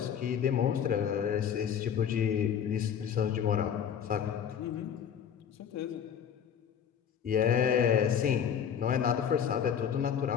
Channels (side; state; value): right; quieter; 8.3 dB